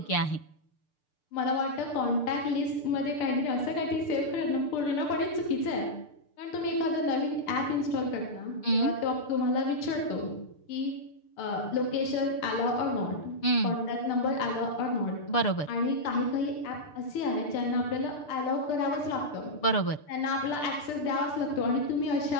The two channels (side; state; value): right; late; 6.7 ms